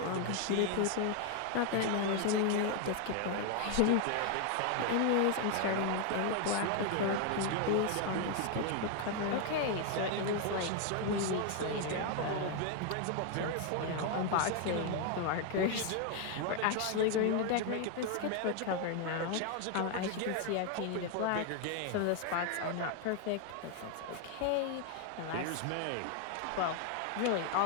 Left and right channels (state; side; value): different; both; correlation 0.01